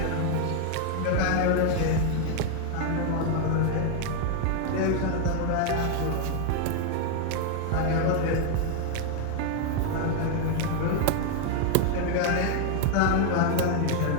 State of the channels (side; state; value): both; different; correlation 0.00